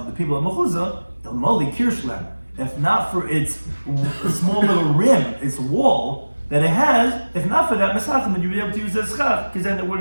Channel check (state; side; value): inverted; both; correlation -1.00